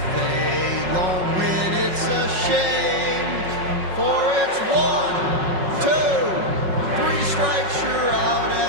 they don't win, it's a shame. For it's 1, 2, 3 strikes, you're out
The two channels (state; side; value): late; left; 5.4 ms